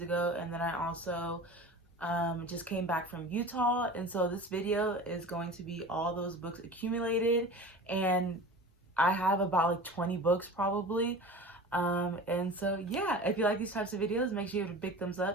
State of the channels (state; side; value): normal; both; correlation 0.36